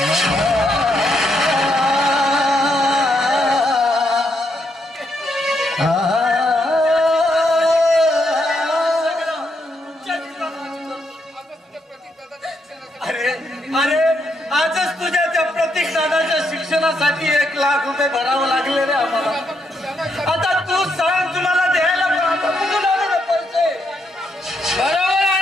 अरे आजच तुझ्या त्या प्रतीक दादाच्या शिक्षणासाठी 1 लाख रुपये भरावं लागले रे आम्हाला. आता तू सांग तुम्हाला द्यायला कुठून आले रे पैसे? बरोबर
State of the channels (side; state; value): both; normal; correlation 0.78